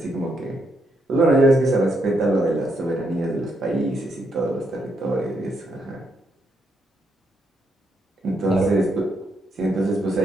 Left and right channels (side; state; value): both; normal; correlation 0.78